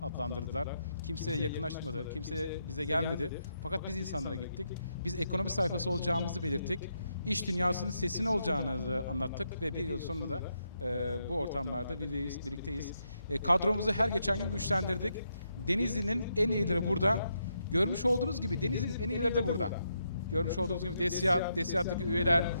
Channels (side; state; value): both; inverted; correlation -0.80